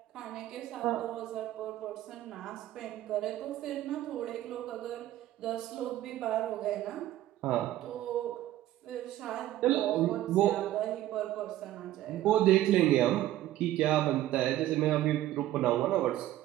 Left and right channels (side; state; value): left; quieter; 14.1 dB